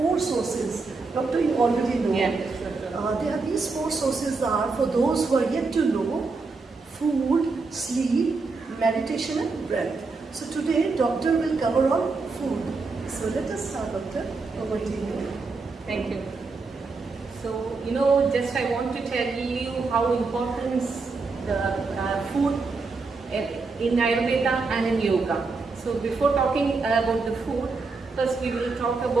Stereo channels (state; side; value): quieter; left; 4.1 dB